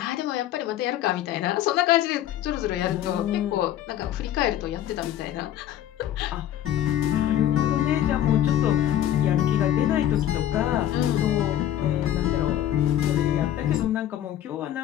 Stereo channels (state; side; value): quieter; right; 11.7 dB